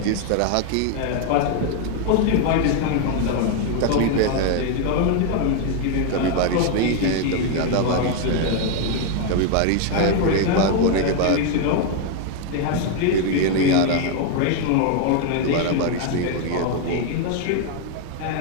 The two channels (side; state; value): both; different; correlation 0.01